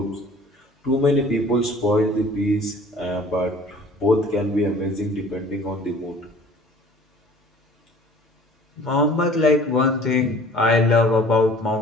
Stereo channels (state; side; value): normal; both; correlation 0.50